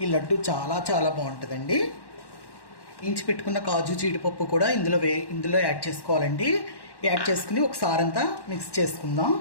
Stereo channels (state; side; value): late; right; 1.1 ms